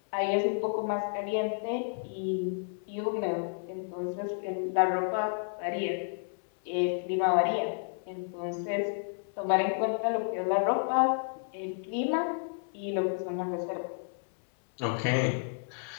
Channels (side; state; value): right; silent; 57 dB below the other